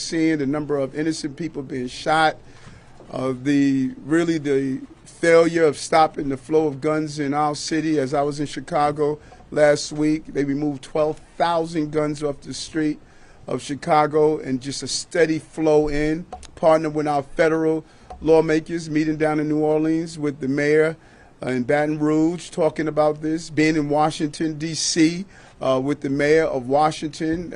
the number of innocent people being shot, the failure of stopping the flow of guns in our city. As I was in Chicago last week, they removed 12,000 guns off the street of Chicago, and just a steady flow in. Partnered with our federal lawmakers, meeting down in New Orleans with the mayor in Baton Rouge, talking about this. Being in Washington, D.C., with the mayor of Washington,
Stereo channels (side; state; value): both; identical; correlation 1.00